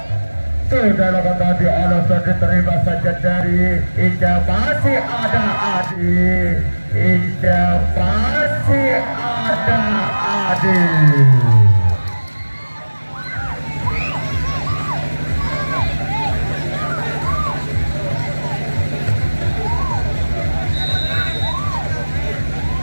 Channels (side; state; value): both; inverted; correlation -1.00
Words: Sudah lakukan tadi oleh Ferdi, terima saja dari Indah. Masih ada Adi. Indah masih ada Adi.